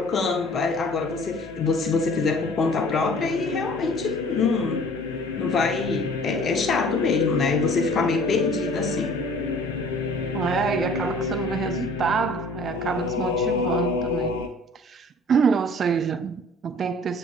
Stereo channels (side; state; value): both; normal; correlation 0.50